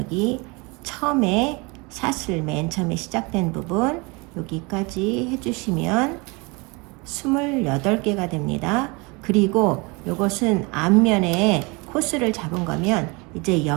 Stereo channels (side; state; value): left; quieter; 27.6 dB